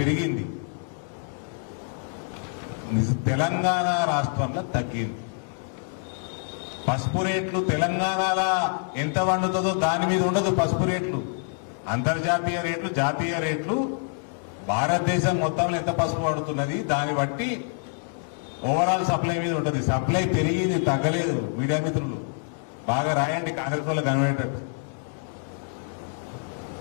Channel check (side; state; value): right; silent; 59 dB below the other